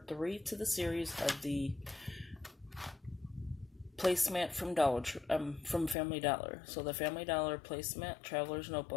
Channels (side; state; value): right; drops out; at 6.0 s